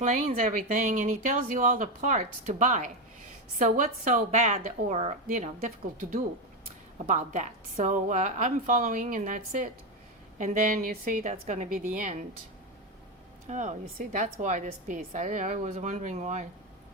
everything, and he tells you all the parts to buy. So what's so bad or, you know, difficult to do about that? So I'm following, and that's it. And then you see, that's going to be the end. Oh, you see, that's why this piece. I was wondering why.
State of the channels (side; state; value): both; normal; correlation 0.11